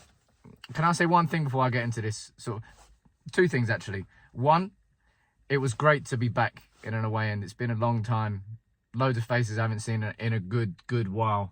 Can I say one thing before I get into this? Two things, actually. One, it was great to be back in an away end. It's been a long time. Loads of faces I haven't seen in a good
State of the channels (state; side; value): identical; both; correlation 1.00